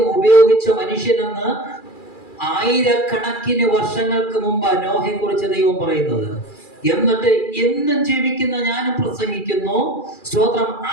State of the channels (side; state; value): right; late; 2.4 ms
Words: ഉപയോഗിച്ച മനുഷ്യനെന്ന് 1000 കണക്കിന് വർഷങ്ങൾക്ക് മുമ്പ് നോഹയെ കുറിച്ച് ദൈവം പറയുന്നത്. എന്നിട്ട് എന്നും ജീവിക്കുന്ന ഞാനും പ്രസംഗിക്കുന്നു. സ്തോത്രം.